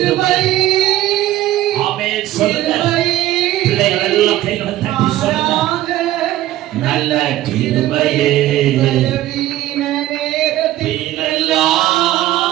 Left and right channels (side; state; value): left; quieter; 14.6 dB